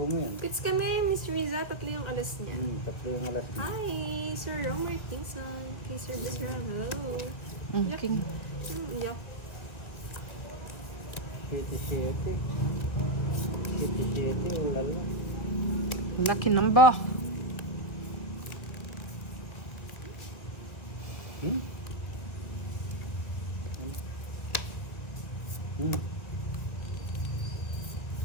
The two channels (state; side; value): late; right; 1.8 ms